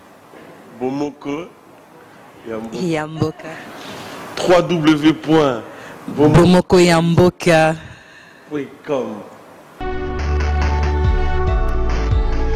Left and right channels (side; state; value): both; identical; correlation 1.00